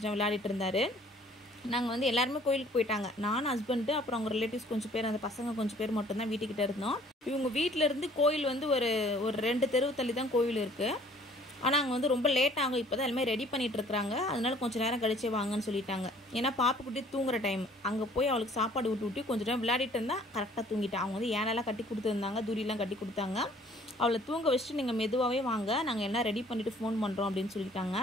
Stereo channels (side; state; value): both; normal; correlation 0.56